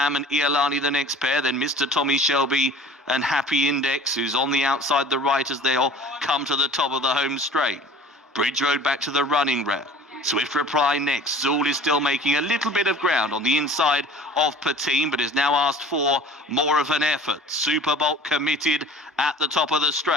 and Iolani the next pair, then Mr. Tommy Shelby and Happy Index, who's on the outside the right as they all come to the top of the home straight. Bridge Road back to the running rail. Swift Reply next. Zool is still making a little bit of ground on the inside of Patine, but is now asked for more of an effort. Superbolt committed at the top of the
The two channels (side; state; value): both; normal; correlation 0.45